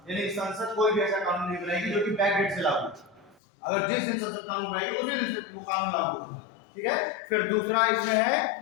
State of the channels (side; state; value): right; drops out; at 3.4 s